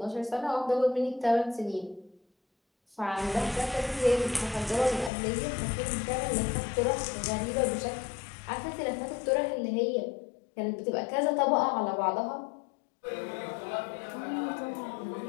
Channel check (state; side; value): drops out; right; at 5.1 s